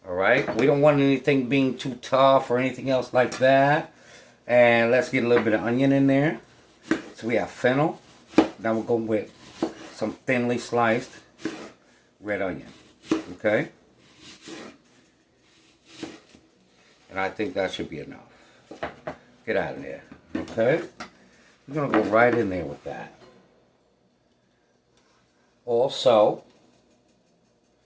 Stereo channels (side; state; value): both; identical; correlation 1.00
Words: Alright? We don't want anything being too tough or anything else like that. And let's get a little bit of onion in there. So we have fennel. Now we'll go with some thinly sliced red onion. Okay? And I think that should be enough. Get out of there. Okay? We're going to go right in there with that. Also,